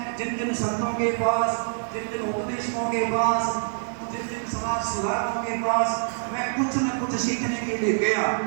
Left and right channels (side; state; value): left; silent; 61 dB below the other